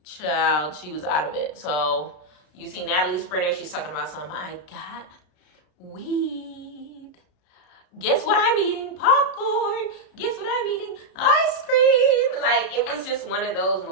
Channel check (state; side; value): late; right; 33 ms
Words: Child, she was out of it. So you see Natalie Sprinter, she's talking about something. I got weed. Guess what I'm eating? Popcorn. Guess what I'm eating? Ice cream. Like, it was just one of those